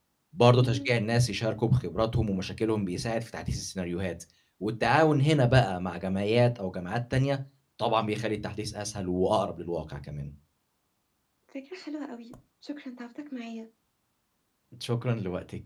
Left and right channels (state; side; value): identical; both; correlation 1.00